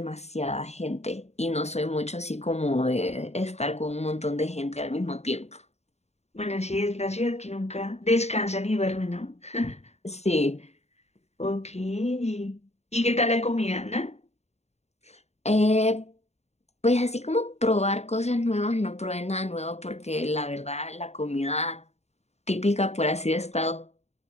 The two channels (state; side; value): late; right; 0.32 ms